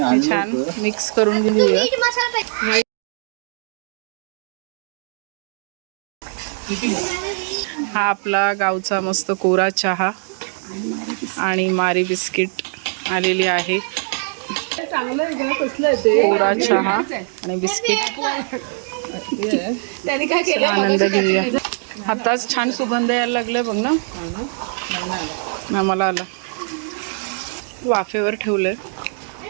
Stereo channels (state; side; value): silent; left; 57 dB below the other